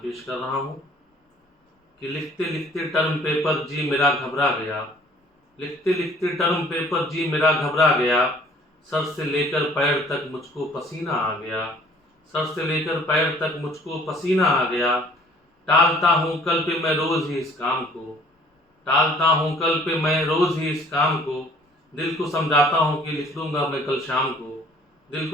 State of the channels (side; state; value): both; normal; correlation 0.54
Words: कर रहा हूँ कि लिखते लिखते टर्म पेपर जी मेरा घबरा गया, लिखते लिखते टर्म पेपर जी मेरा घबरा गया, सर से लेकर पैर तक मुझको पसीना आ गया, सर से लेकर पैर तक मुझको पसीना आ गया। टालता हूँ कल पे मैं रोज़ ही इस काम को, टालता हूँ कल पे मैं रोज़ ही इस काम को, दिल को समझाता हूँ कि लिख लूँगा मैं कल शाम को, दिल